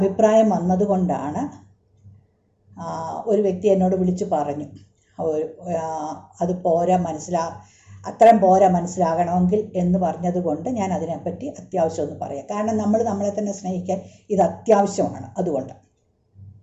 വന്നതുകൊണ്ടാണ് ഒരു വ്യക്തി എന്നോട് വിളിച്ചു പറഞ്ഞു, അത് പോരാ, അത്രയും പോരാ മനസ്സിലാകണമെങ്കിൽ എന്ന് പറഞ്ഞതുകൊണ്ട് ഞാൻ അതിനെപ്പറ്റി അത്യാവശ്യം ഒന്ന് പറയാം. കാരണം നമ്മൾ നമ്മളെ തന്നെ സ്നേഹിക്കാൻ ഇത് അത്യാവശ്യമാണ്. അതുകൊണ്ട്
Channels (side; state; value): both; identical; correlation 1.00